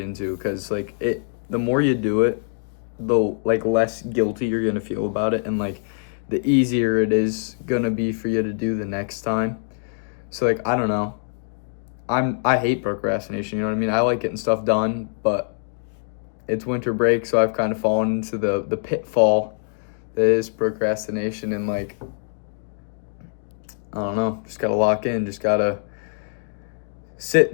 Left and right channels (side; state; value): right; silent; digital silence